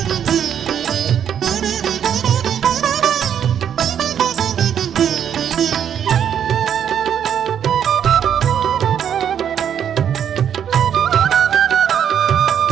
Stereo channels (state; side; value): quieter; left; 8.9 dB